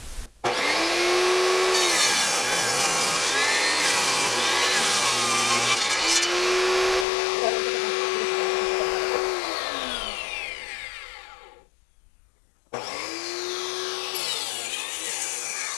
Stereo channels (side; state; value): right; drops out; at 7.1 s